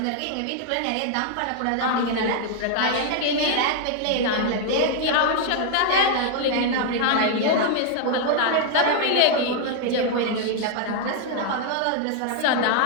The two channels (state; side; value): different; both; correlation 0.00